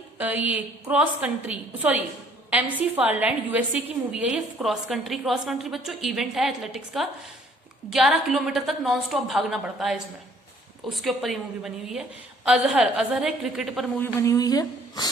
ये क्रॉस कंट्री, एमसी फारलैंड, यूएसए की मूवी है ये, क्रॉस कंट्री बच्चों इवेंट है एथलेटिक्स का, 11 किलोमीटर तक नॉन स्टॉप भागना पड़ता है इसमें, उसके ऊपर ये मूवी बनी हुई है। अजहर है, क्रिकेट पर मूवी बनी हुई है।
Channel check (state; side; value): normal; both; correlation 0.60